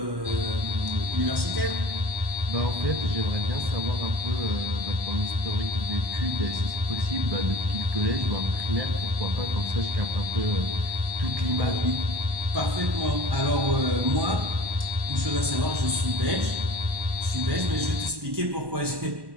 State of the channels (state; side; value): late; left; 1.1 ms